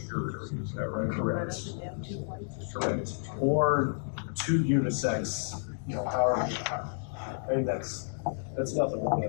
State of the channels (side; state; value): right; silent; digital silence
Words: Is that right? Correct. Or 2 unisex, however. I mean, that's nothing more